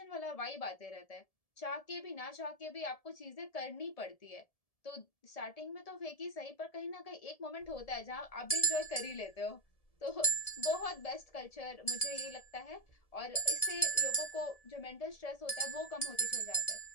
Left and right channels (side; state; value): right; late; 1.7 ms